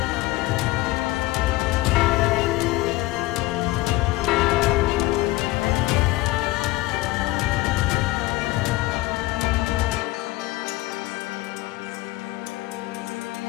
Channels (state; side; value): quieter; right; 18.7 dB